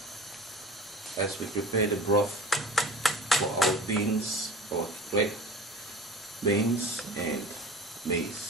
as we prepare the broth for our beans, or red beans and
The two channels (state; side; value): normal; both; correlation 0.39